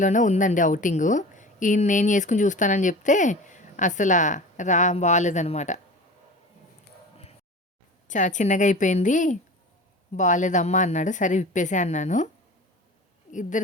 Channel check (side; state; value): both; normal; correlation 0.36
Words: ఉందండి అవుటింగు. ఈయన నేను చేసుకుని చూస్తానని చెప్తే అసలు బాగాలేదనమాట. చాలా చిన్నగా అయిపోయింది, బాగాలేదమ్మా అన్నాడు. సరే విప్పేసే అన్నాను.